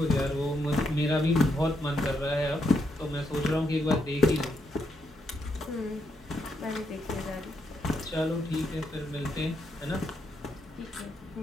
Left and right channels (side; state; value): both; normal; correlation 0.79